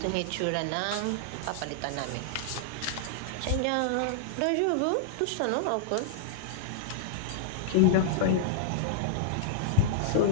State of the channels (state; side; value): different; both; correlation -0.01